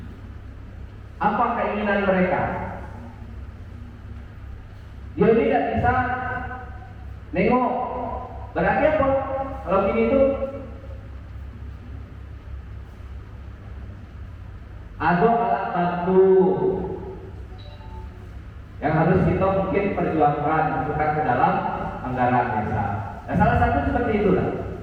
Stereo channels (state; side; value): identical; both; correlation 1.00